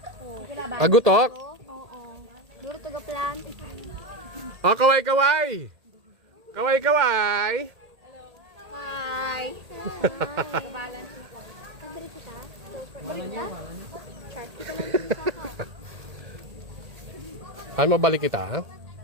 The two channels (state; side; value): late; left; 1.8 ms